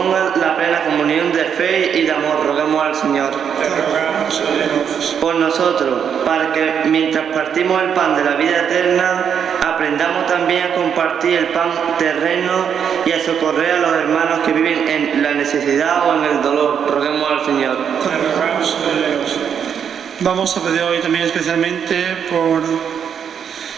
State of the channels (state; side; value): quieter; left; 7.8 dB